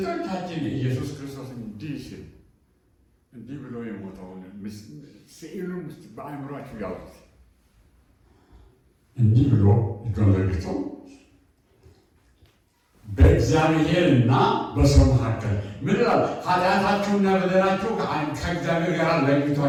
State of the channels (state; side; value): identical; both; correlation 1.00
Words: ኢየሱስ ክርስቶስ እንዲህ ሲል እንዲህ ብሎ የሞተውን ስዕሉን ውስጥ በአእምሯችሁ ያውቁት እንዲህ ብሎ እጁን ዘርግቶ በእግዚአብሔርና በሰው መካከል ምን ይላል? ኃጢአታችሁና በደላችሁ ከእግዚአብሔር ጋር